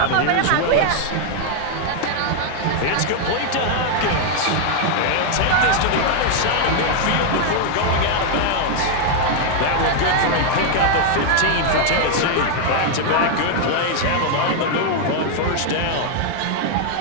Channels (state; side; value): different; both; correlation 0.00